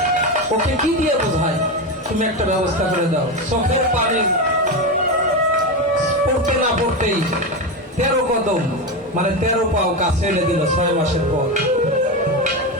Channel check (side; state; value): both; normal; correlation 0.15